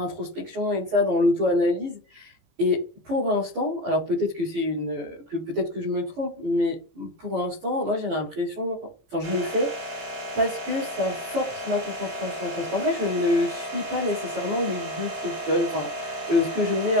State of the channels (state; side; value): late; left; 18 ms